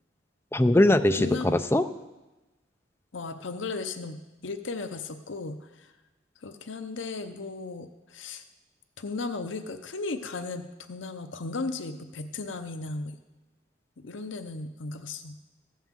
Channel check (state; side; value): normal; both; correlation 0.73